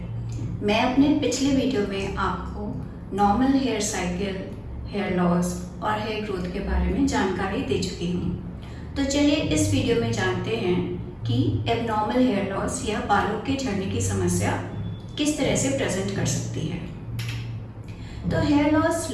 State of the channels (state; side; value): identical; both; correlation 1.00